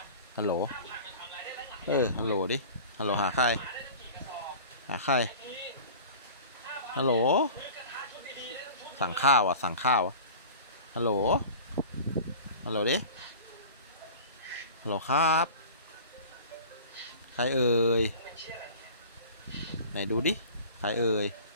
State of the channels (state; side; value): inverted; both; correlation -0.39